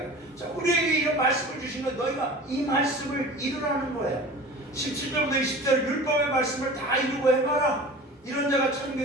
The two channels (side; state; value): both; normal; correlation 0.39